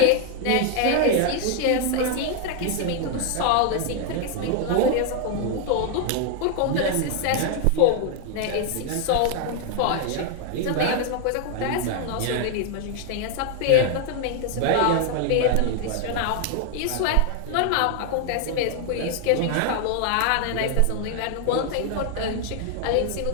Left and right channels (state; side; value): different; both; correlation 0.00